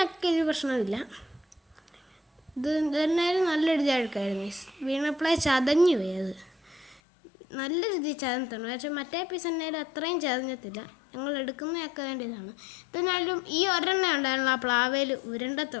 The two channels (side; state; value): right; drops out; at 7.0 s